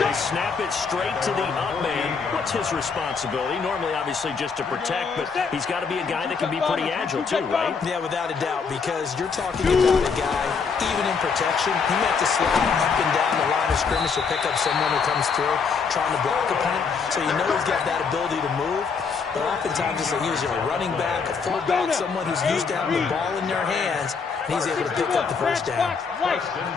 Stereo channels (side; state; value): right; quieter; 5.5 dB